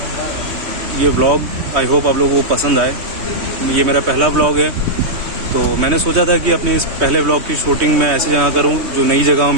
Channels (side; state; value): left; late; 3.2 ms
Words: ये व्लॉग आई होप आप लोगों को पसंद आए। ये मेरा पहला व्लॉग है, तो मैंने सोचा था कि अपने इस पहले व्लॉग की शूटिंग मैं ऐसी जगह करूं जो नई जगह हो